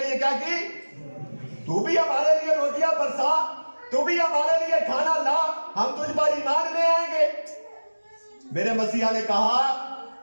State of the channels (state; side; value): inverted; both; correlation -1.00